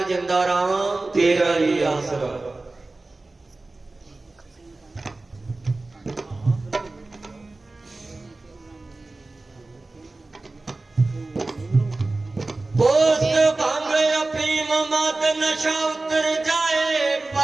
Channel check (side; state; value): left; quieter; 3.2 dB